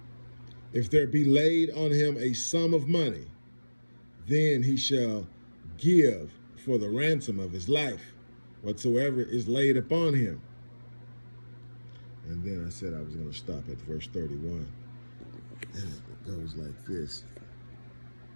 If there be laid on him a sum of money, then he shall give for the ransom of his life whatsoever is laid upon him. And then I said I was going to stop at verse 31. And it goes like this.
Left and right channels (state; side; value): inverted; both; correlation -1.00